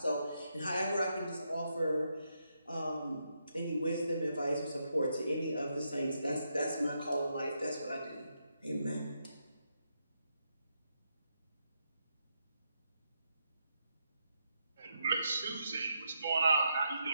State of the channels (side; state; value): both; inverted; correlation -0.81